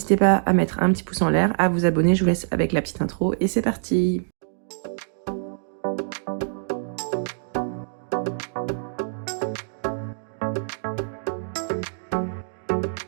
pas à mettre un petit pouce en l'air, à vous abonner, je vous laisse avec la petite intro et c'est parti.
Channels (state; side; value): silent; left; digital silence